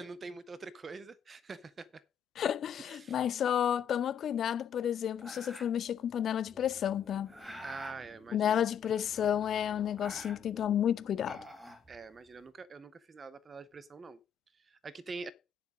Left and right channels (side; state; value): right; quieter; 8.3 dB